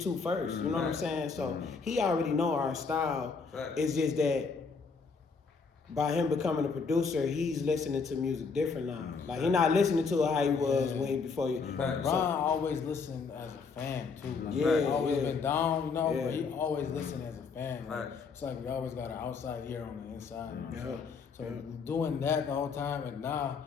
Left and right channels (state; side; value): quieter; right; 5.0 dB